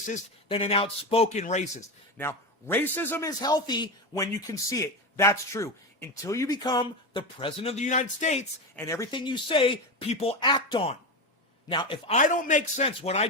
than an outspoken racist. Now, racism is healthy when you can see it. That's true. Until you become the president of the United States and everything you say, people act on. Now, if I don't make sense what I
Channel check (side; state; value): both; normal; correlation 0.18